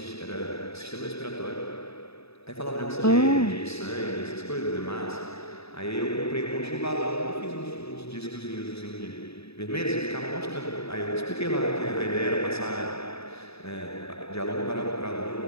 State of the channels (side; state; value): right; late; 0.78 ms